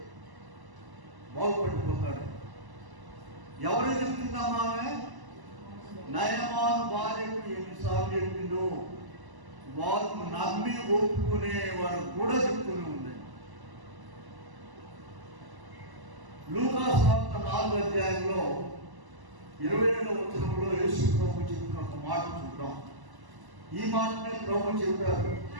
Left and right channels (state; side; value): late; left; 1.0 ms